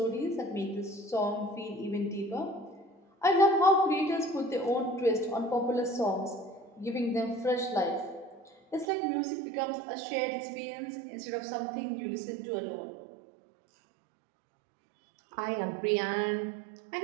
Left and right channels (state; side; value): drops out; left; at 8.8 s